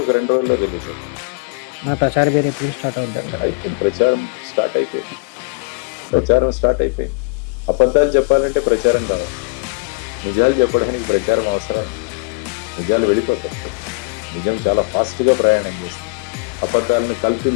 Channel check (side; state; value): right; quieter; 32.0 dB